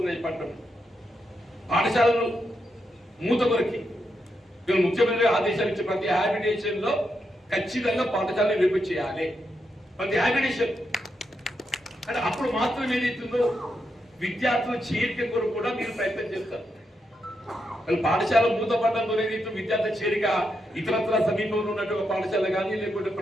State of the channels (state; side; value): normal; both; correlation 0.83